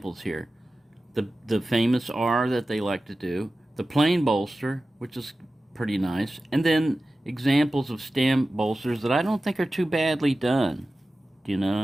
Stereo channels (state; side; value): normal; both; correlation 0.95